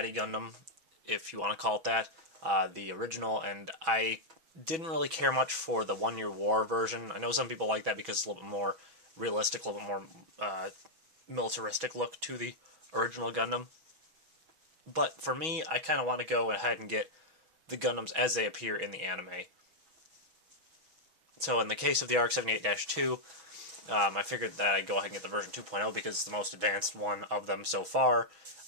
Gundam, if you want to call it that, the original, and I didn't really care much for the 1 Year War version. I know some people like that because it's a little bit more realistic, a little bit more militaristic look to the original Gundam. But for me, I kind of want to go ahead and get the Gundams as they appear in the anime. So in the case of the RX-78-2, I figured that I'd go ahead and get the version 2.0 because it's the most advanced one of them so far.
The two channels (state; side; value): late; left; 6.2 ms